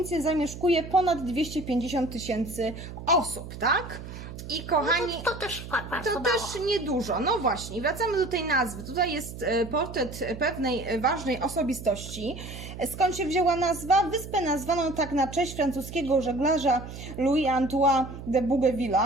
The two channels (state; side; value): noise; right; hum, 11 dB below the sound